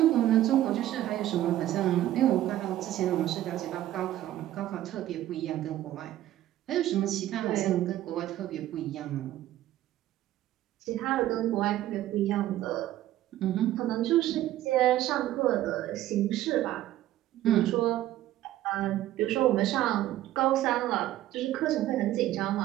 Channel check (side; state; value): left; quieter; 13.8 dB